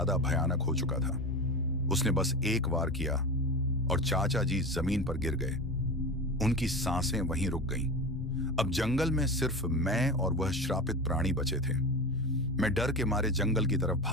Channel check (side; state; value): both; normal; correlation 0.26